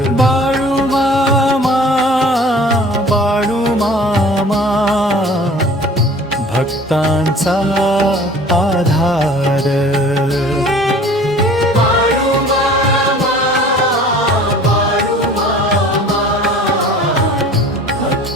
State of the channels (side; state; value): both; normal; correlation 0.47